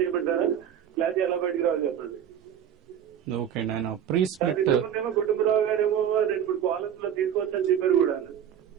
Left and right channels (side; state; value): left; quieter; 9.4 dB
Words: చేయబడ్డారా లేదా ఎలా బయటికి రావాలి చెప్పండి. ఓకే అండి, ఆయన ప్రీ స్ప్లిట్ కుటుంబరావు గారేమో 2-3 కాలర్స్ లో తీసుకోవచ్చని చెప్పారు కూడా.